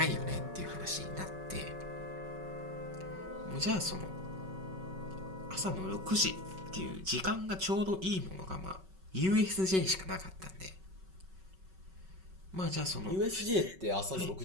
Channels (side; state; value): left; late; 5.3 ms